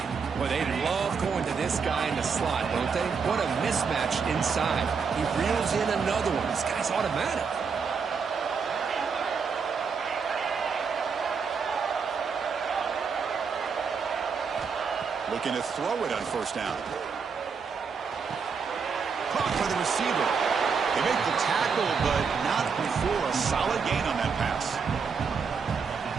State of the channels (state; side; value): quieter; left; 5.7 dB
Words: Well, they love going to this guy in the slot, don't they? What a mismatch inside. He reels in another one. This guy's automatic. Looking to throw it on first down. Caught by the receiver. They make the tackle, but not before a solid gain on that pass.